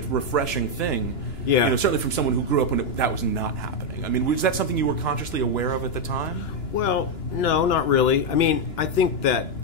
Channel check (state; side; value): late; right; 2.9 ms